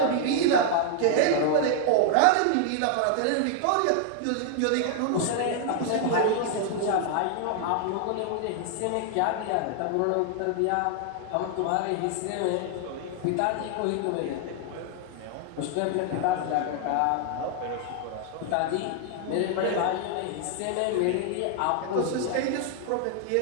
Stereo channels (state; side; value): different; both; correlation 0.00